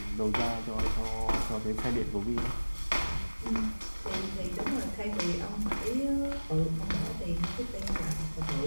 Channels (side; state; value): both; inverted; correlation -1.00